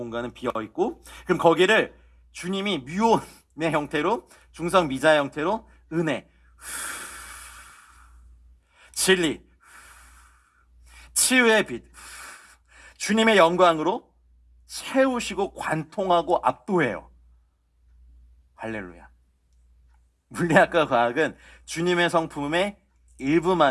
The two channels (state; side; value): identical; both; correlation 1.00